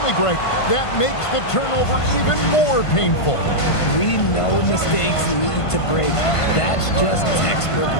Greg. That makes the turnover even more painful. We know mistakes lead to breaks. That's just textbook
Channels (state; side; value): late; right; 1.5 ms